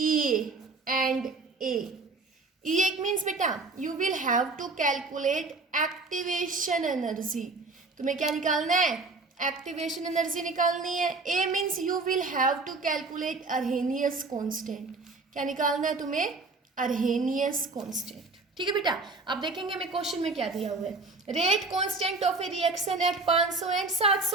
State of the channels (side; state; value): left; quieter; 3.7 dB